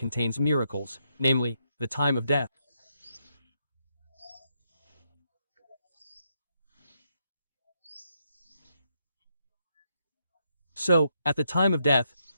miracles, namely, the time of death. So, at the time of death,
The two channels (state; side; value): inverted; both; correlation -0.79